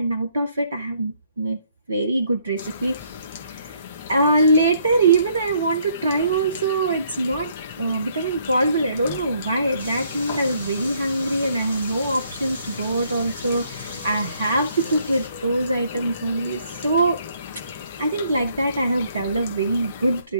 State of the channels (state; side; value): inverted; both; correlation -0.68